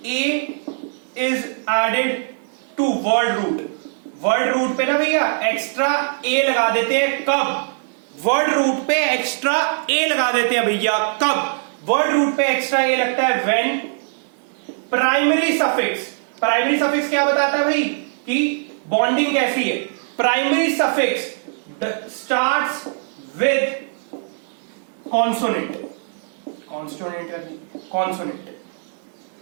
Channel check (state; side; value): silent; left; 58 dB below the other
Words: a is added to word root. Word root पे ना भैया एक्स्ट्रा ए लगा देते हैं, कब, वर्ड रूट पे एक्स्ट्रा ए लगा देते हैं भैया, कब, वर्ड रूट पे एक्स्ट्रा ए लगता है when primary suffix. Primary suffix क्या बताता है भाई कि बॉन्डिंग कैसी है। Primary suffix starts with consonant, consonant,